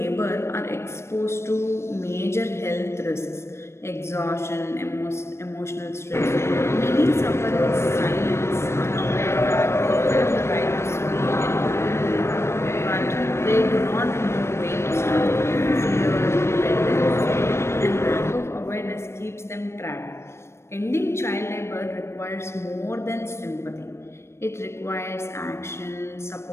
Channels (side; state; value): right; late; 0.13 ms